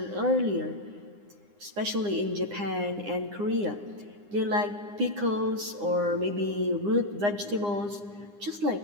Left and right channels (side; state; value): left; late; 9.8 ms